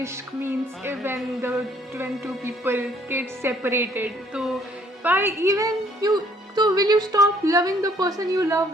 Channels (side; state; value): both; normal; correlation 0.62